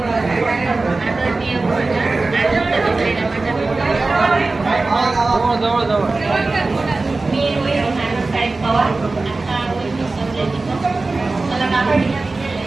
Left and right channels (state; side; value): quieter; left; 3.5 dB